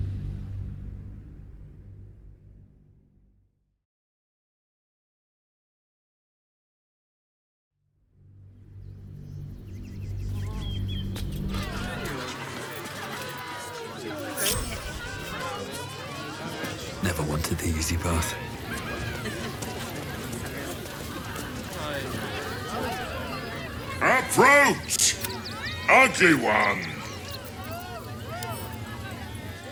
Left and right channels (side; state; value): both; identical; correlation 1.00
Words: Never wanted the easy path. Approach! Ugly one!